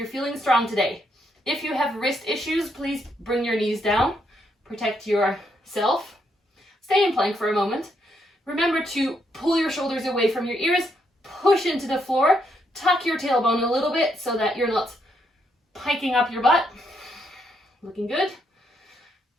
feeling strong today. If you have wrist issues, please bring your knees down, protect yourself. Stay in plank for a moment. Remember to pull your shoulders away from your ears, push into the floor, tuck your tailbone a little bit so that you're not piking up your butt. Looking good.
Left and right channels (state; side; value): normal; both; correlation 0.77